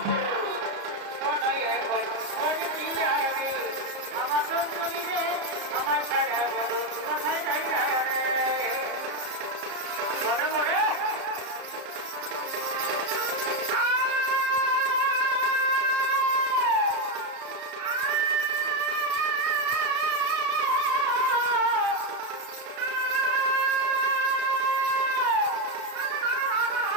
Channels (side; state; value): left; late; 34 ms